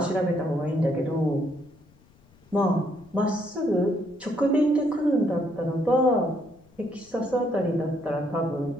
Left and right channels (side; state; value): left; noise; rumble, 29 dB below the sound